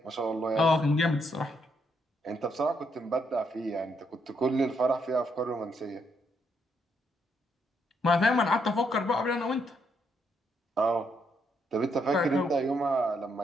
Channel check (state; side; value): normal; both; correlation 0.76